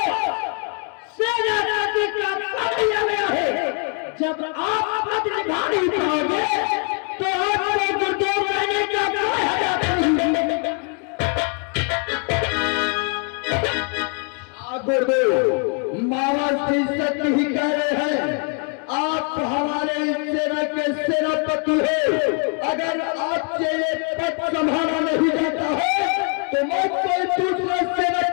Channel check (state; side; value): quieter; right; 36.5 dB